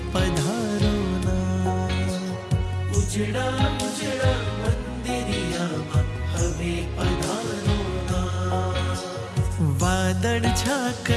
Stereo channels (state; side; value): identical; both; correlation 1.00